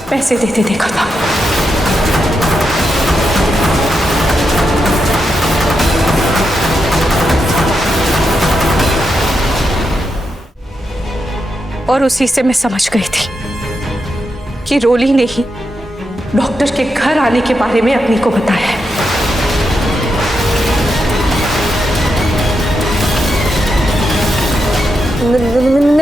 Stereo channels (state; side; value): normal; both; correlation 0.84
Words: पैसे देते देखा था। और उसी से मैं समझ गई थी कि रोली ने ही डॉक्टर के घर आने के बारे में अग्नि को बताया है।